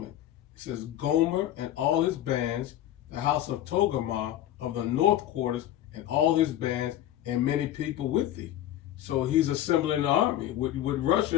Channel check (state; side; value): quieter; right; 12.4 dB